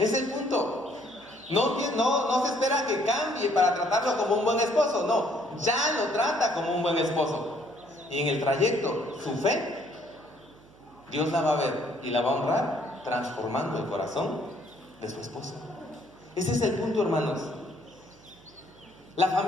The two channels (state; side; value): noise; right; hum, 26 dB below the sound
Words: el punto. No se espera que cambie para tratarlo como un buen esposo, no, ya lo trata como un buen esposo. Y en el trayecto, su fe, Dios la va a ver y la va a honrar transformando el corazón de su esposo. Ese es el punto, hermanos. La